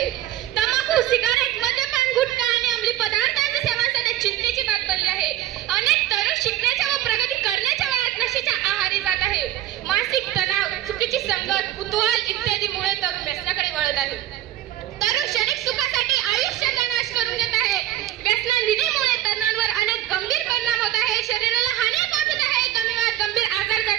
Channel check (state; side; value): quieter; left; 13.4 dB